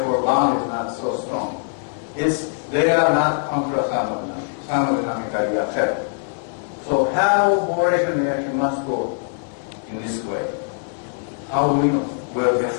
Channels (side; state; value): right; silent; 59 dB below the other